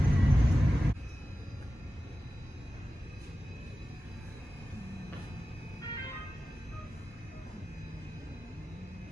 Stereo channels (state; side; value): normal; both; correlation 0.94